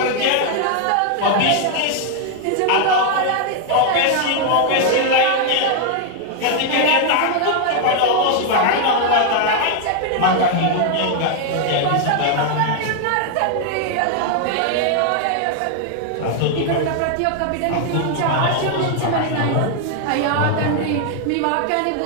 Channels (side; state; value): both; different; correlation 0.00